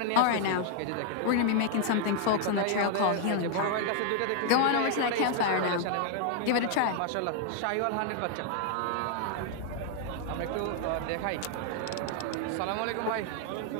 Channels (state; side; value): different; both; correlation 0.00